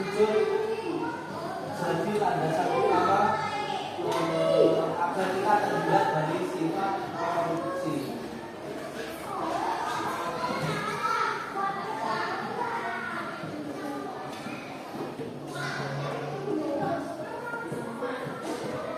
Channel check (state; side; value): identical; both; correlation 1.00